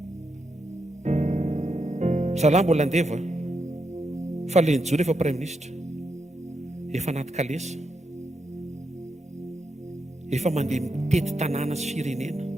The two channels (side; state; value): both; normal; correlation 0.83